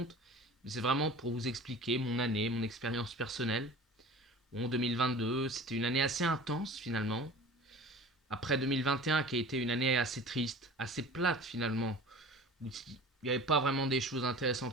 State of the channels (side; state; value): both; normal; correlation 0.41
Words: Mais c'est vraiment pour vous expliquer mon année, mon expérience personnelle. Bon, 2022, c'était une année assez intense finalement. Après 2021 qui a été une année assez triste, assez plate finalement, où il n'y avait pas vraiment des choses